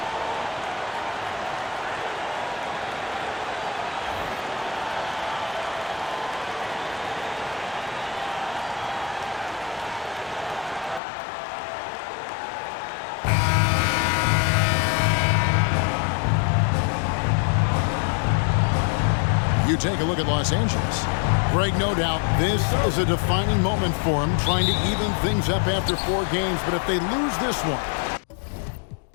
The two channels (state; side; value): drops out; right; at 11.0 s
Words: You take a look at Los Angeles. Greg, no doubt, this is a defining moment for him, trying to even things up after 4 games. But if they lose this one,